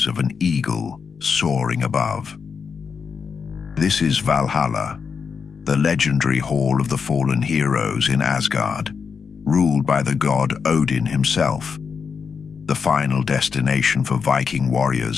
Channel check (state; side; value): quieter; right; 5.9 dB